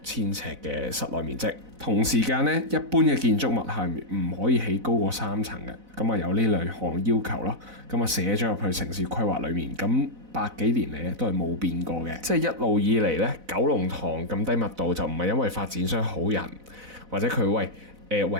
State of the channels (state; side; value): late; left; 4.0 ms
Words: 尺嘅室內面積。同時間咧，一般嘅建築物係唔可以起高過3層嘅。咁啊，有呢兩項要求咯。咁啊，寫咗入去城市規劃裏面。咁百幾年嚟咧都係冇變過嘅。即係一路以嚟咧，九龍塘咁低密度就唔係因為發展商好人，或者佢